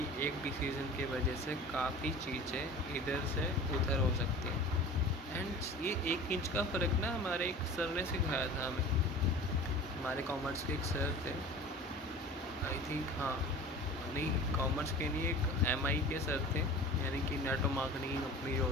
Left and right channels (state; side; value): normal; both; correlation 0.39